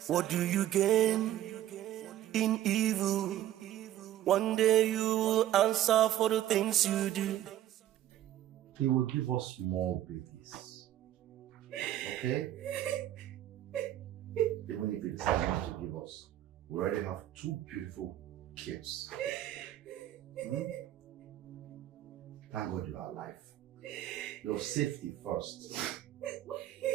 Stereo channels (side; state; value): left; quieter; 12.8 dB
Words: What do you gain in evil? One day you will answer for the things you do. He will give us more babies. Okay? Even if he decides not to give us, We already have 2 beautiful kids. Thank God you are alive. Your safety first.